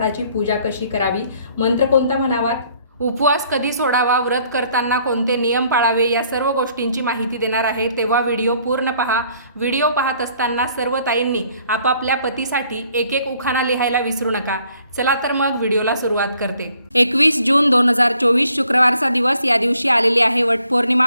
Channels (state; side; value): inverted; both; correlation -0.63